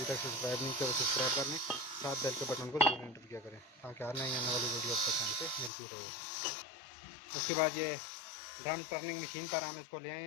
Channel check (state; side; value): drops out; right; at 5.7 s